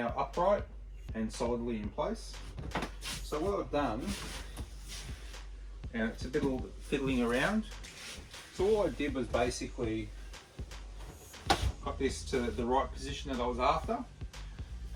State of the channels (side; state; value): both; identical; correlation 1.00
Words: upright and solidly in place. So what I've done, and it's a bit of fiddling around, so all I did was basically got this to the right position that I was after,